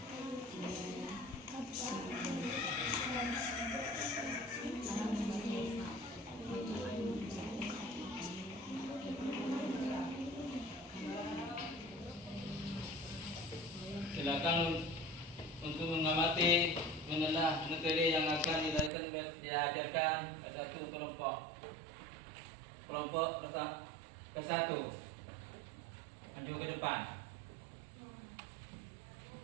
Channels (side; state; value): left; drops out; at 18.9 s